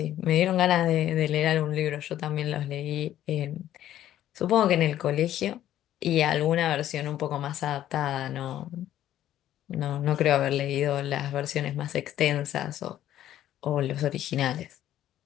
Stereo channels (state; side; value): quieter; right; 12.3 dB